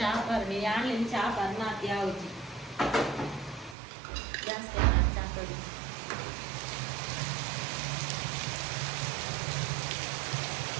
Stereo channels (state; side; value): drops out; left; at 3.8 s